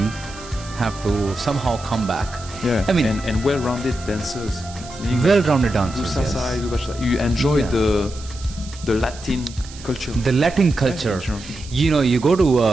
have to somehow come back. Yeah, I mean, and well-rounded dancers. Well-rounded dancers. Do salsa, do bachata. You enjoy the Latin culture. The Latin culture. You go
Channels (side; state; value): right; noise; hiss, 17 dB below the sound